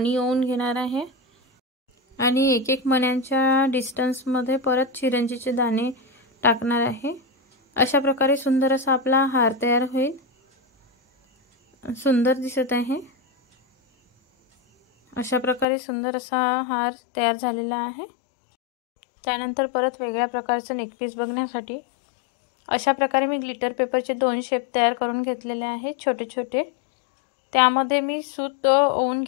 ओवून घेणार आहे आणि एक एक मण्यांच्या डिस्टन्समध्ये परत चिरंजीचे दाणे टाकणार आहे. अशा प्रकारे सुंदर असा आपला हार तयार होईल. सुंदर दिसत आहे. अशा प्रकारे सुंदर असा हार तयार झालेला आहे. त्यानंतर परत वेगळ्या प्रकारचं नेकपीस बघण्यासाठी अशा प्रकारे मी ग्लिटर पेपरचे दोन शेप तयार करून घेतलेले आहेत छोटे छोटे. त्यामध्ये मी सूत ओवून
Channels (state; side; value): drops out; right; at 15.7 s